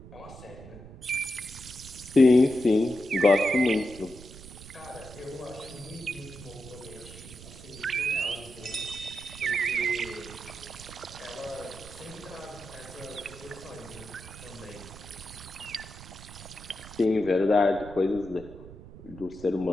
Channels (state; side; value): noise; right; rumble, 16 dB below the sound